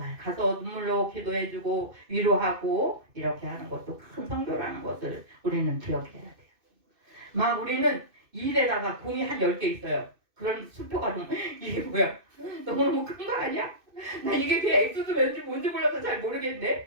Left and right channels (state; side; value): late; left; 2.6 ms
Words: 가서 눈물로 기도해주고 위로하고 이렇게 하는 것도 큰 성교라는 것을 우리는 기억해야 돼요. 막 우리는 일에다가 공이 한 10개 있어요. 그런 수표가 좀 이게 뭐야? 너무너무 큰 거 아니야? 나 이게 그냥 엑스도 왠지 뭔지 몰라서 잘